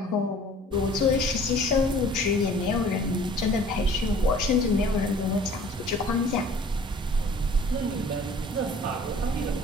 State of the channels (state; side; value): normal; both; correlation 0.50